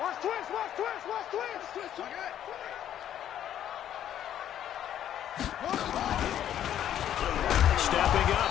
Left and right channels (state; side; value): quieter; right; 10.7 dB